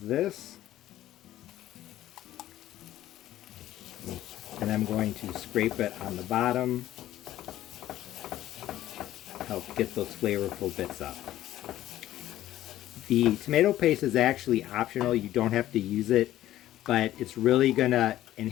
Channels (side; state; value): right; quieter; 13.8 dB